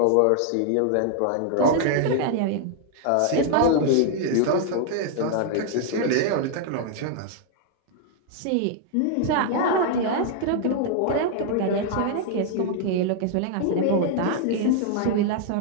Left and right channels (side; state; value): both; different; correlation 0.00